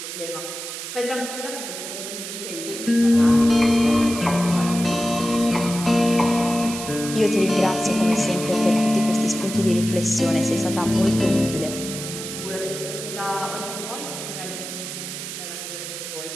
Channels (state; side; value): noise; right; hiss, 8 dB below the sound